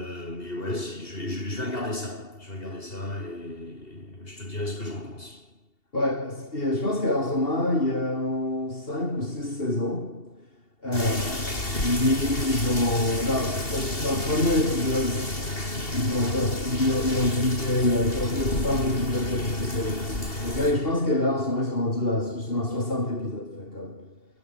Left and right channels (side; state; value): right; late; 2.7 ms